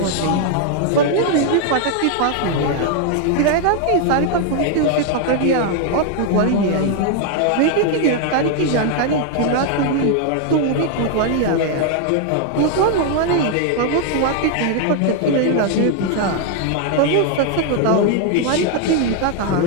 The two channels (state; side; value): different; both; correlation 0.00